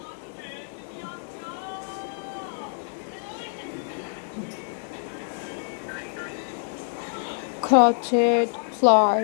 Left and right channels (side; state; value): right; silent; digital silence